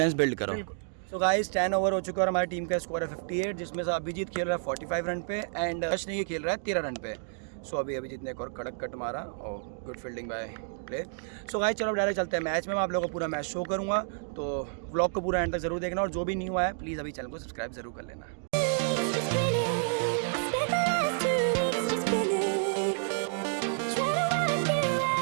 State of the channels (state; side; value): silent; left; digital silence